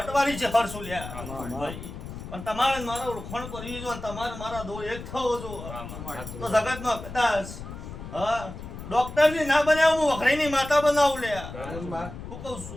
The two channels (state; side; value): noise; left; rumble, 11 dB below the sound